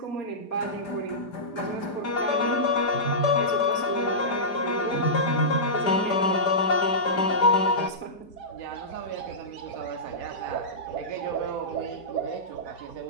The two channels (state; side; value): late; right; 5.0 ms